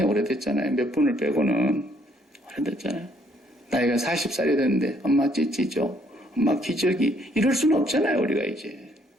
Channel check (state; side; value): normal; both; correlation 0.67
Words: 오래됐잖아요. 몇 분을 빼고는 오래됐잖아요. 나이가 40살이 됐는데 엄마 찌찌죠. 엄마 기저귀. 이럴 수는 없잖아요. 우리가 이제.